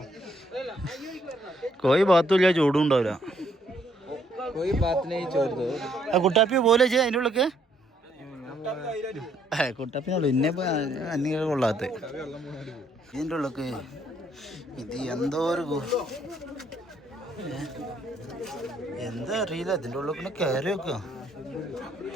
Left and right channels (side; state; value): both; normal; correlation 0.69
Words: കോയി ഭാഗത്തുമില്ല, ചൂടും ഉണ്ടാവില്ല. കുട്ടാപ്പി പോലെ അതിൻ്റെ ഉള്ളൊക്കെ കുട്ടാപ്പിനുള്ളു ഇന്നെ അന്യ കൊള്ളാത്ത ഇതിൻ്റെ ഉള്ളൊക്കെ. ഇത് എന്തോ ഒരു എന്താ അറിയില്ല. ഇതിൻ്റെ ഉള്ളിൽ പിന്നെ കയറി വെക്കുക.